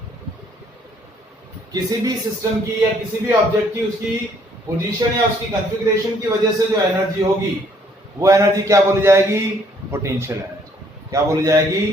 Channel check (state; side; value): normal; both; correlation 0.64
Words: किसी भी सिस्टम की या किसी भी ऑब्जेक्ट की उसकी पोजीशन या उसकी कॉन्फ़िगरेशन की वजह से जो एनर्जी होगी वो एनर्जी क्या बोली जाएगी? Potential energy. क्या बोली जाएगी?